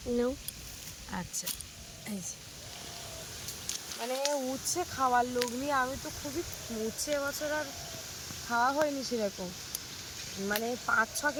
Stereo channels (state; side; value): identical; both; correlation 1.00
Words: নাও আচ্ছা এই যে মানে উচ্ছে খাওয়ার লোক নিয়ে আমি তো খুবই উচ্ছে এবছর আর খাওয়া হয়নি সেরকম মানে 5-6